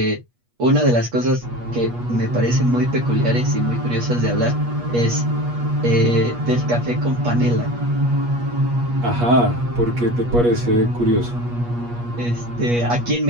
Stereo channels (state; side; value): late; left; 8.4 ms